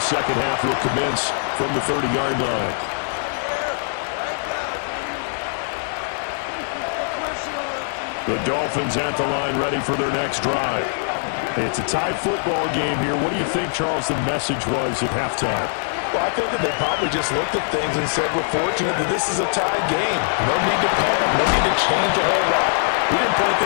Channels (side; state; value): right; silent; 57 dB below the other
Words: second half will commence from the 30-yard line. The Dolphins at the line ready for their next drive. It's a tie football game here. What do you think, Charles, the message was at halftime? Well, I think that they probably just looked at things and said, we're fortunate that this is a tied game. No need to panic. No need to change a whole lot. We didn't play